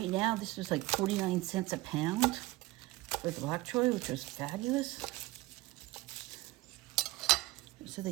now, this was like 49 cents a pound for the bok choy, which was fabulous. So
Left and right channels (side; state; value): left; quieter; 19.5 dB